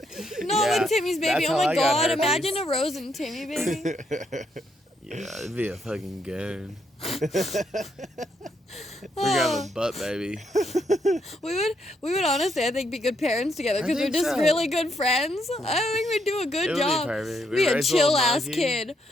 No, Yeah, with Timmy's baby. that's Oh how my I got god. herpes. Imagine a Rose and Timmy baby. Yeah, it'd be a fucking goon. We're gonna have a butt baby. We would honestly, I think, be good parents together I because we're think just so. really good friends. I think we'd do a good It would be job. perfect. We Be a raise a little chill ass monkey. kid.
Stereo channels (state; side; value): normal; both; correlation 0.76